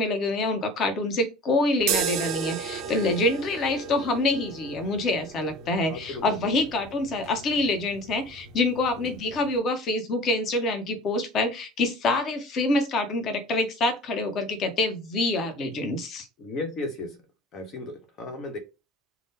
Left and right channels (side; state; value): both; normal; correlation 0.40